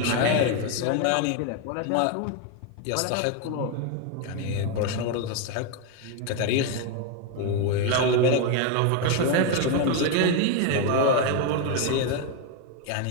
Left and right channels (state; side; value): different; both; correlation 0.01